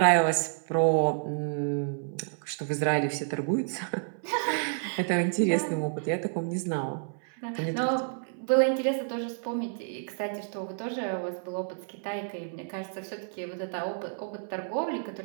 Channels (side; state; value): left; silent; 58 dB below the other